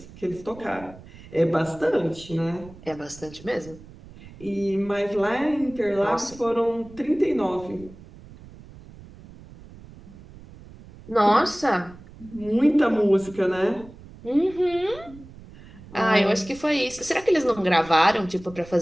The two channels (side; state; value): right; noise; rumble, 19 dB below the sound